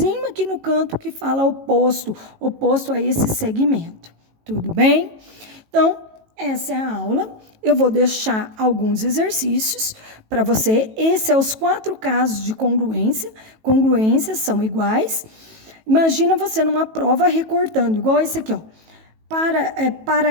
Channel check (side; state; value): left; late; 18 ms